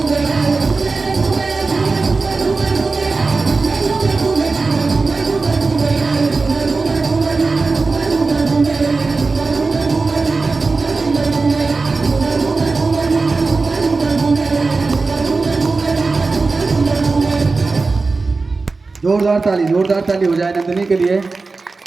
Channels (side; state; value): left; quieter; 3.9 dB